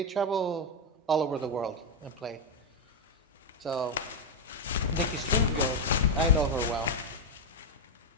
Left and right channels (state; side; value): normal; both; correlation 0.03